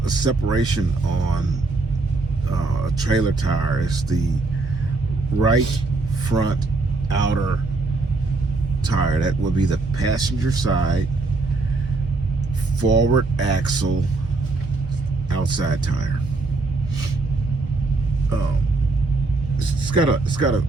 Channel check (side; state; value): left; quieter; 3.4 dB